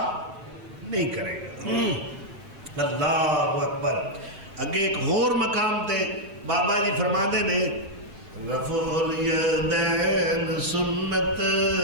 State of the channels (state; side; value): late; left; 6.3 ms